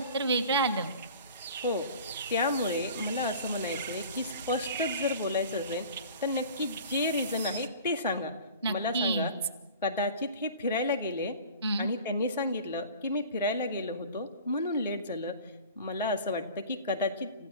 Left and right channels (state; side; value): inverted; both; correlation -0.42